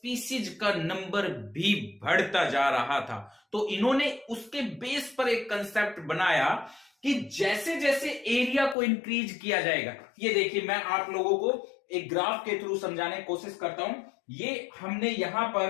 का नंबर भी बढ़ता जा रहा था. तो इन्होंने उसके बेस पर एक कंसेप्ट बनाया कि जैसे जैसे एरिया को इंक्रीज किया जाएगा. ये देखिए, मैं आप लोगों को एक ग्राफ के थ्रू समझाने की कोशिश करता हूं. ये हमने यहां पर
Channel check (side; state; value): right; drops out; at 8.8 s